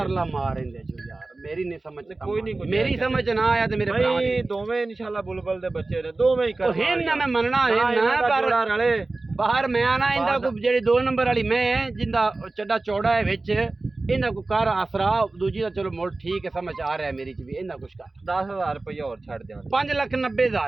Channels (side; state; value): left; quieter; 3.3 dB